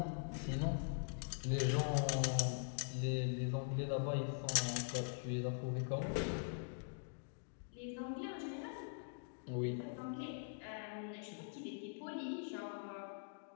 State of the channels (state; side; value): silent; right; digital silence